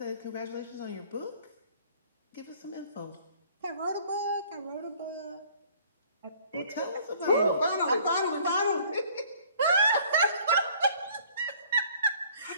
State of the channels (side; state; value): both; inverted; correlation -0.55